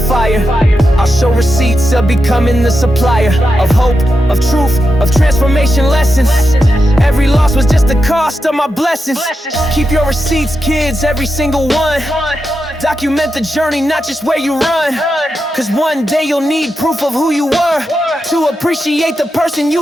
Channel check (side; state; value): both; normal; correlation 0.88